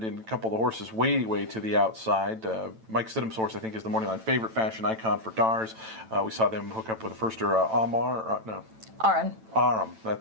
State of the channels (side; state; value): left; late; 9.0 ms